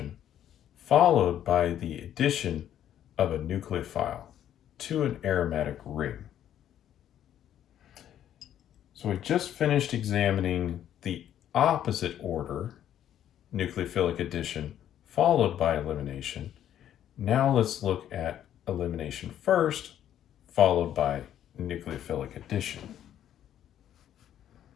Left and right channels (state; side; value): quieter; right; 10.8 dB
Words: followed by the addition of a nucleophile to an aromatic ring. So we just finished examining the opposite order, nucleophilic addition followed by elimination. Now let's look at elimination first, followed by nucleophilic addition.